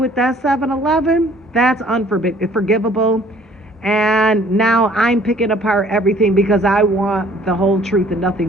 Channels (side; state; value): both; normal; correlation 0.56